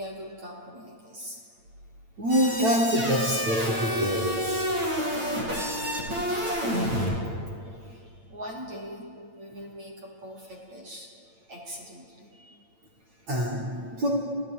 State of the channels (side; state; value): left; late; 8.9 ms